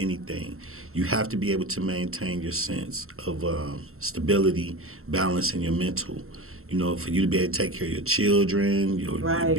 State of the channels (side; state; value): left; late; 0.62 ms